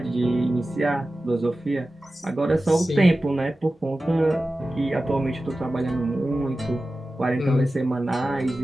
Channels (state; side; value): normal; both; correlation 0.95